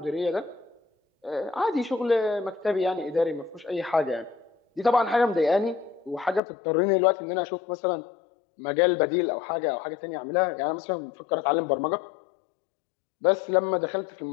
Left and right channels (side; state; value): right; drops out; at 6.4 s